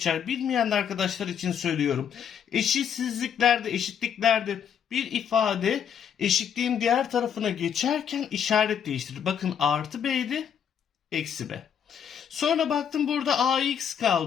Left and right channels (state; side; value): quieter; right; 8.2 dB